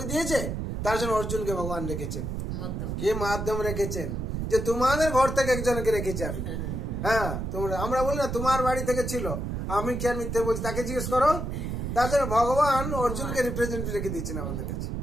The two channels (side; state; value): right; noise; rumble, 3 dB below the sound